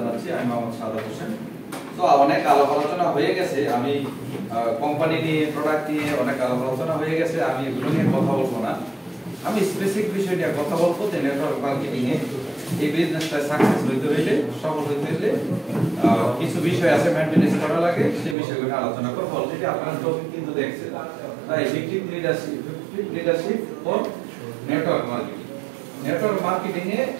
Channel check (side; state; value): left; drops out; at 18.4 s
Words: আমি মোহাম্মদ সাদাত হোসেন। তো অনেক আলাপ আলোচনা হয়ে গেছে, আমি কোম্পানি নিয়ে, প্রোডাক্ট নিয়ে অনেক আলাপ আলোচনা হয়ে গেছে, আমি এগুলো নিয়ে কথা বলবো না। আমি স্পেসিফিক বিষয় নিয়ে কথা বলবো যে নেটওয়ার্ক মার্কেটিং এ এই বিজনেসটা সাকসেস হইতে হইলে, সফল হইতে হইলে কিছু বিষয় আছে মেইনটেনেন্স করা লাগে, সেই বিষয়গুলো আলোচনা করব। অলরেডি আপনারা টপিক কিন্তু দেখছেন, তাই effective leadership for network marketing. Network marketing এ